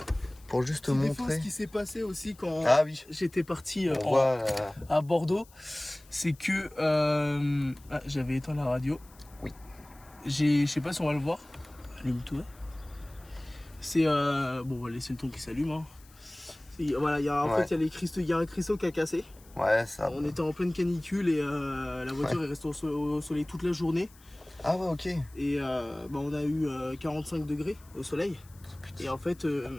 Pour juste montrer ce qui s'est passé aussi quand j'étais parti à Bordeaux, c'est que j'avais éteint la radio. Oui. Je sais pas si on va le voir. Allume-toi. C'est bon, on va laisser le ton qui s'allume. Hein. Voilà, il y a un cristaux qui a cassé. Ouais, ça. On était en pleine canicule et la voiture est restée au soleil toute la journée. Ah ouais, ok. Et on a eu 45 degrés au soleil. Et en fait,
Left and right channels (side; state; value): left; noise; hiss, 26 dB below the sound